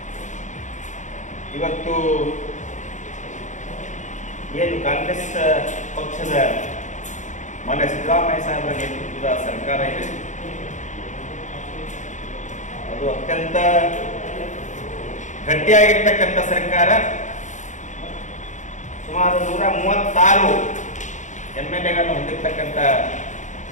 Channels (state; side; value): late; right; 0.35 ms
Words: ಇವತ್ತು ಏನು ಕಾಂಗ್ರೆಸ್ ಪಕ್ಷದ ಮಾನ್ಯ ಸಿದ್ದರಾಮಯ್ಯ ಸಾಹೇಬರ ನೇತೃತ್ವದ ಸರ್ಕಾರ ಇದೆ, ಅದು ಅತ್ಯಂತ ಗಟ್ಟಿಯಾಗಿರ್ತಕ್ಕಂಥ ಸರ್ಕಾರ. ಸುಮಾರು 136 MLAಗಳನ್ನು ಹೊಂದಿರತಕ್ಕಂಥ